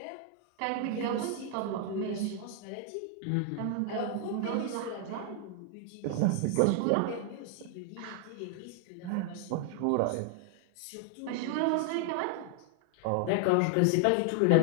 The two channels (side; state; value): both; different; correlation 0.00